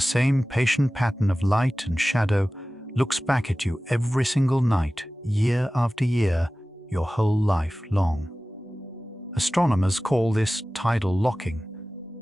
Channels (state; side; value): normal; both; correlation 0.97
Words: same patient pattern of light and shadow looks back at you every single night, year after year. your whole life long. Astronomers call this tidal locking.